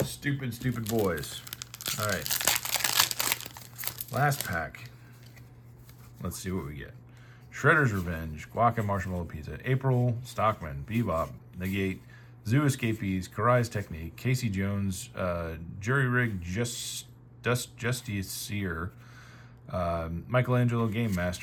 stupid boys. All right. Last pack. Let's see what we get. Shredder's Revenge, Guac and Marshmallow Pizza, April, Stockman, Bebop, Negate, Zoo Escapees, Karai's Technique, Casey Jones, Jury Rig, Justiciar, Michelangelo Game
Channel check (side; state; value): both; identical; correlation 1.00